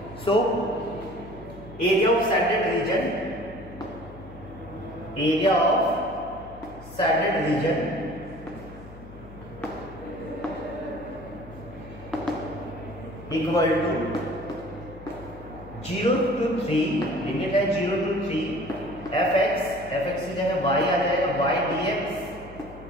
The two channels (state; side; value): noise; left; hum, 17 dB below the sound